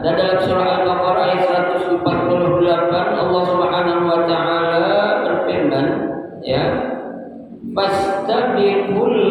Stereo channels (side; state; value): both; identical; correlation 1.00